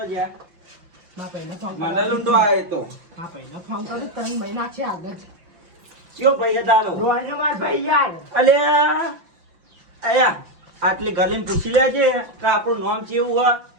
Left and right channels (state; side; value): late; left; 5.8 ms